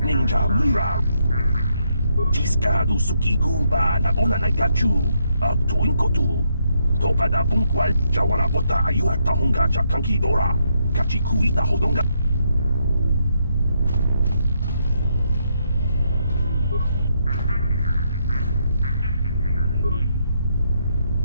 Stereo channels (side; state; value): both; inverted; correlation -0.76